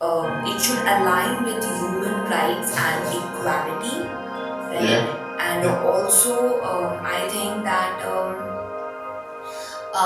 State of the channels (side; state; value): both; identical; correlation 1.00